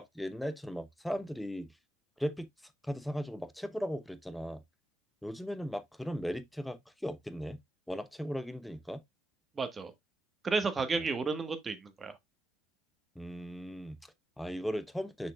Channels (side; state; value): both; normal; correlation 0.91